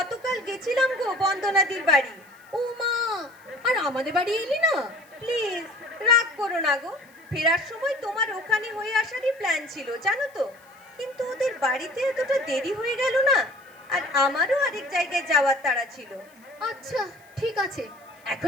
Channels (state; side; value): noise; left; hiss, 30 dB below the sound